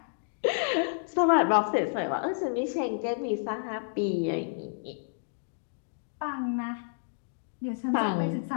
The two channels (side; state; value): right; silent; digital silence